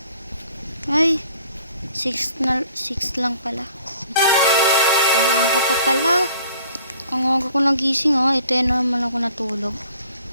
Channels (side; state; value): both; inverted; correlation -0.55